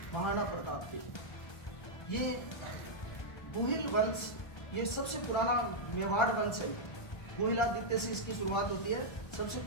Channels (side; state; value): right; late; 1.3 ms